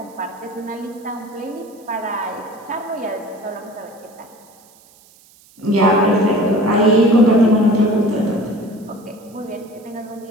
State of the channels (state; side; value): noise; right; hiss, 28 dB below the sound